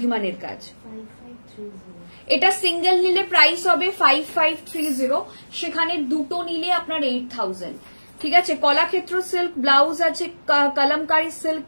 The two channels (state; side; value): inverted; both; correlation -1.00